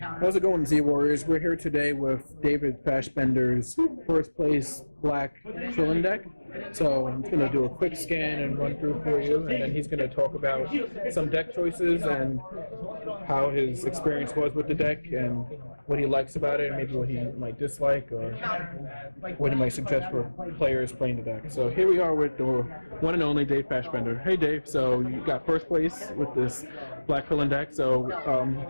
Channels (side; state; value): both; inverted; correlation -1.00